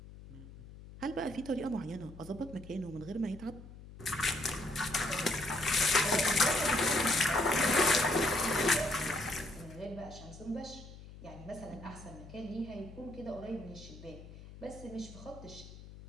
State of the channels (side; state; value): left; noise; hum, 16 dB below the sound